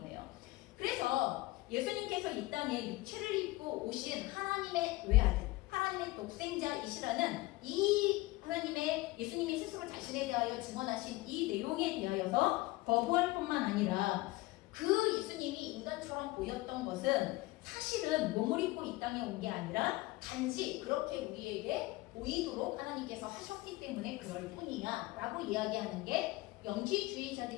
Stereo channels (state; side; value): quieter; right; 20.2 dB